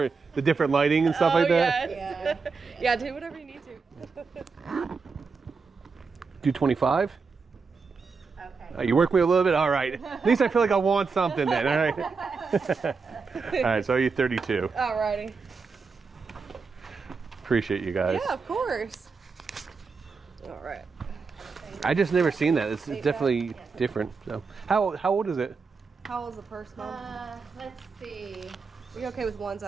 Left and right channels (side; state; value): left; quieter; 4.8 dB